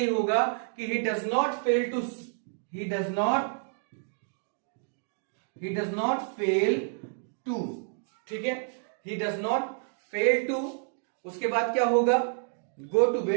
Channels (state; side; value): silent; left; 58 dB below the other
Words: होगा कि he does not fail to, ठीक है, he does not fail to. उसके बाद क्या होगा, go to